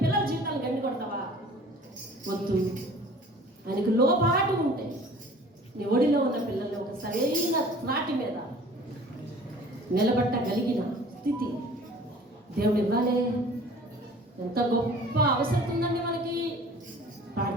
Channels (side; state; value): both; normal; correlation 0.48